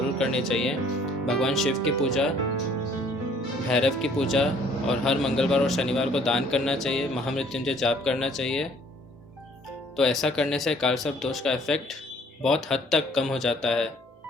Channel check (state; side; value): normal; both; correlation 0.59